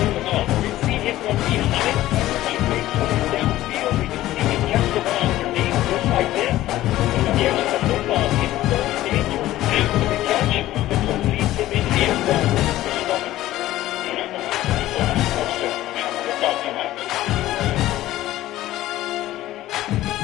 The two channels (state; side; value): quieter; right; 15.0 dB